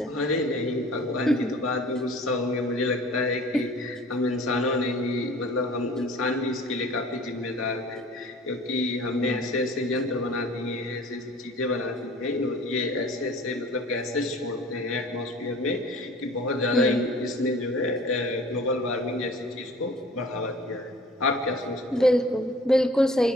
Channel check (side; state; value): both; normal; correlation 0.47